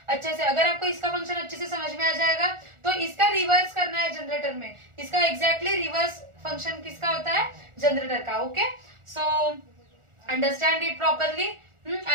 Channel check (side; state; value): left; late; 1.4 ms